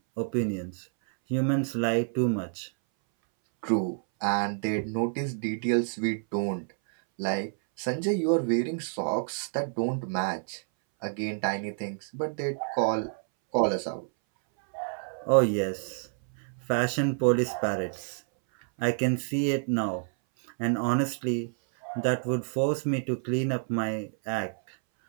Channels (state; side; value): silent; left; 59 dB below the other